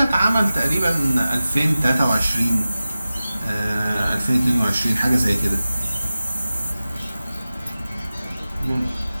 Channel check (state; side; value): inverted; both; correlation -0.95